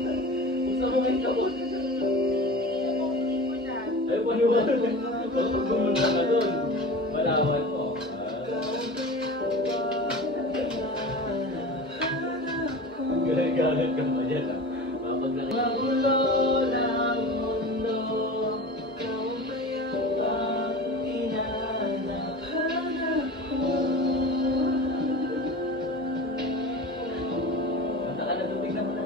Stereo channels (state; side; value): normal; both; correlation 0.34